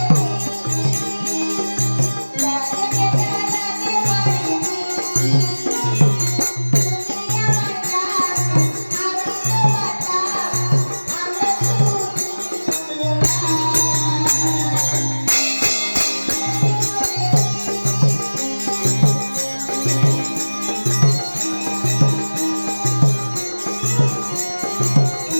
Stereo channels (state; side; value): inverted; both; correlation -1.00